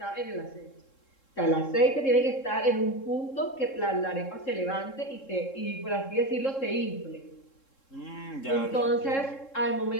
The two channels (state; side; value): late; right; 3.7 ms